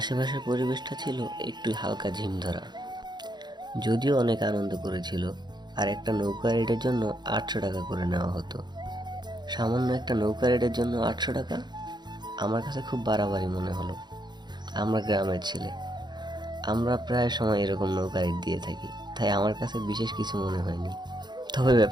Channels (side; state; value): left; late; 0.21 ms